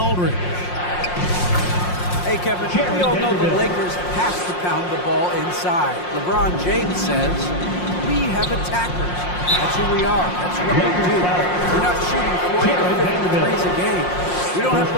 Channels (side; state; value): right; late; 5.6 ms